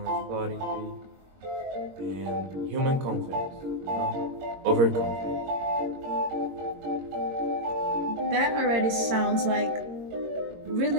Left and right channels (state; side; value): late; left; 22 ms